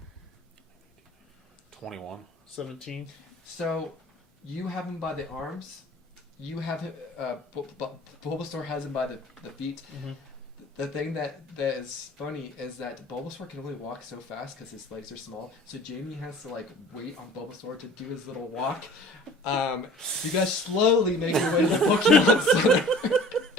21. 17. So you have him by the arms. You have him. Bulbasaur has him by the feet. Mhm. The thing that is funny is that Bulbasaur can only walk so fast because his legs are small. So Jamie has to like wait on Bulbasaur to do his little walk. You guys slowly make your way to the Pokemon Center.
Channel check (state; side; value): normal; both; correlation 0.46